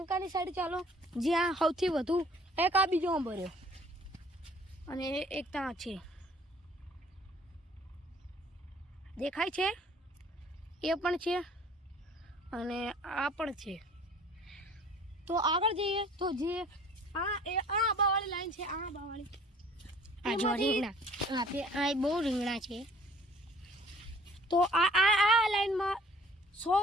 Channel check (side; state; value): both; normal; correlation 0.54